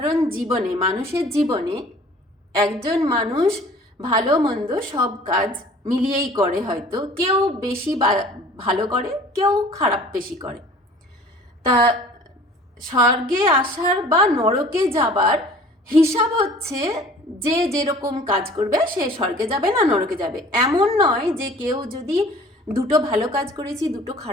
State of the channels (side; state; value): both; normal; correlation 0.49